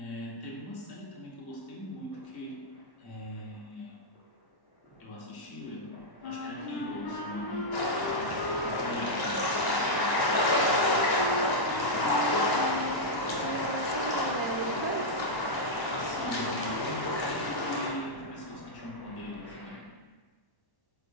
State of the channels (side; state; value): right; late; 1.1 ms